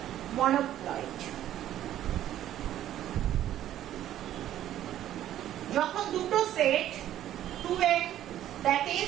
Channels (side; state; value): left; quieter; 12.1 dB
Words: মনোপ্লয়েড। যখন দুটো set 2n, that